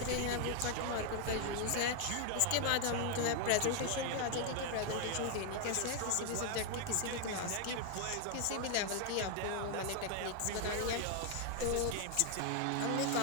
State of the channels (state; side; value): different; both; correlation 0.00